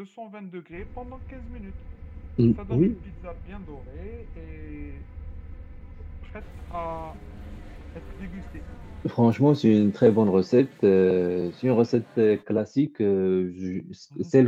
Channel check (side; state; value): both; identical; correlation 1.00